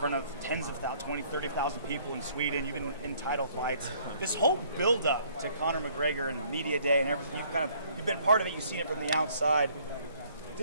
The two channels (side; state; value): both; inverted; correlation -0.61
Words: of tens of thousands, 20, 30,000 people in Sweden. You've been in title fights. This whole build-up to Conor McGregor and media day and everything, you've been part of it. You've seen it from the outside.